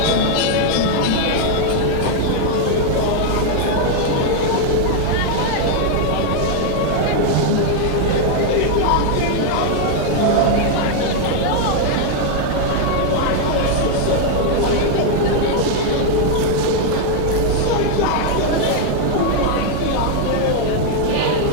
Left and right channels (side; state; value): both; different; correlation 0.00